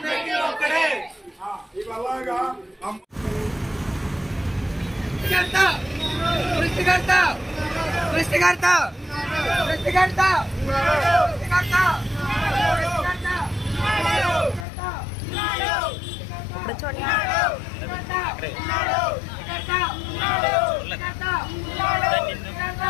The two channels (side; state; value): right; drops out; at 14.7 s